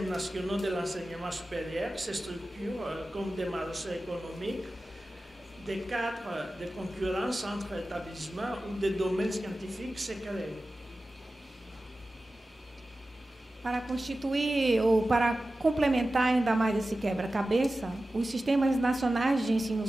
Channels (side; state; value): both; normal; correlation 0.95